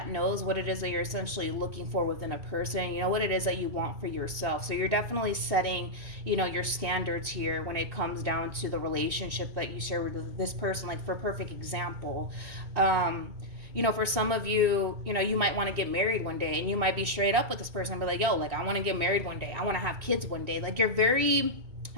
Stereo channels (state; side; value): late; left; 3.1 ms